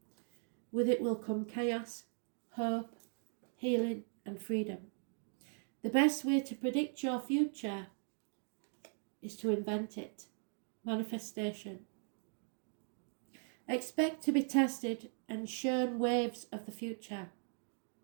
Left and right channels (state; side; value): silent; left; 52 dB below the other